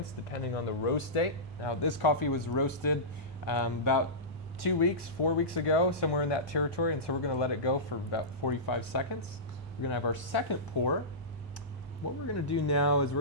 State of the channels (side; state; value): both; normal; correlation -0.18